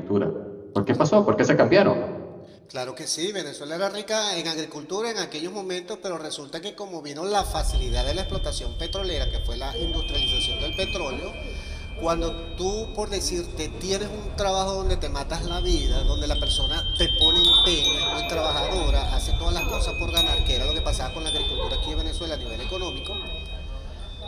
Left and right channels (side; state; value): both; identical; correlation 1.00